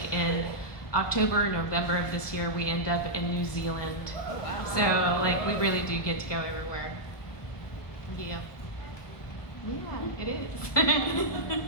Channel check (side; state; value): right; late; 1.2 ms